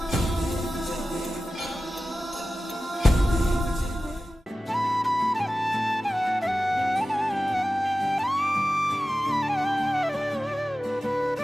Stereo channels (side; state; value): both; normal; correlation 0.95